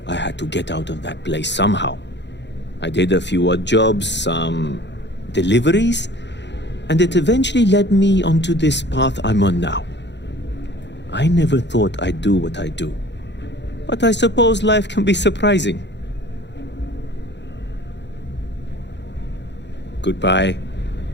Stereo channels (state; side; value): late; right; 0.51 ms